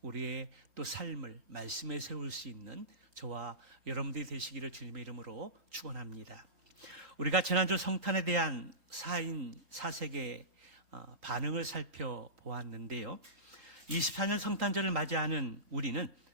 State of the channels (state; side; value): late; left; 3.1 ms